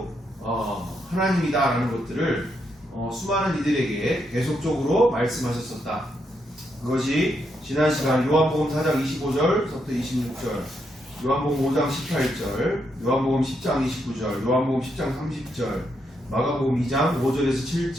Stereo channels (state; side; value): normal; both; correlation 0.79